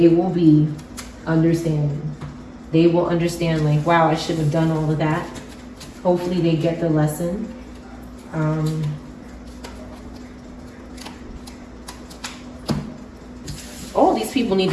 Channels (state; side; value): identical; both; correlation 1.00